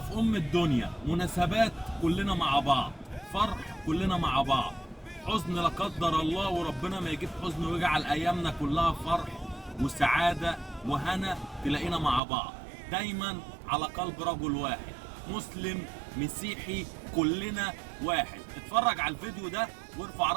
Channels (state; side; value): drops out; left; at 12.2 s